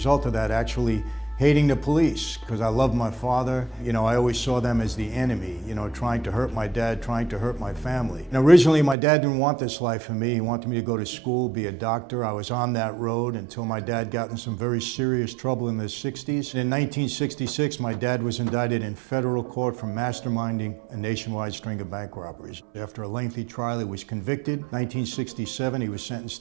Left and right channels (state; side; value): drops out; left; at 9.0 s